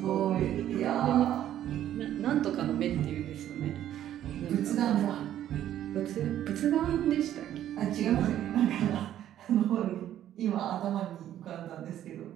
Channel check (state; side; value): quieter; left; 11.6 dB